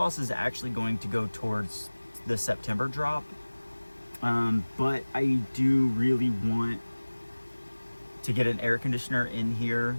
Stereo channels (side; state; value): both; inverted; correlation -1.00